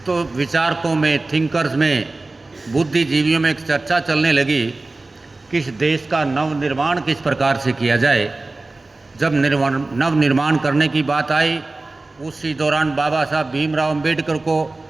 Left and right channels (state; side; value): quieter; left; 3.2 dB